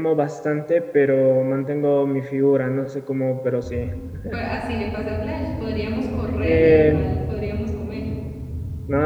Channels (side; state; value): both; identical; correlation 1.00